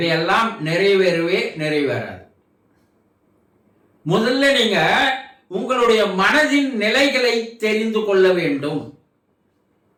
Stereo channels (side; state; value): both; identical; correlation 1.00